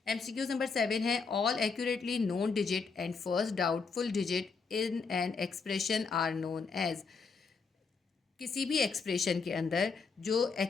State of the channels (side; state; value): right; quieter; 4.9 dB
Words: MCQ number 7 है all accurately known digit and first doubtful digit in an expression are known as. किसी भी expression के अंदर जो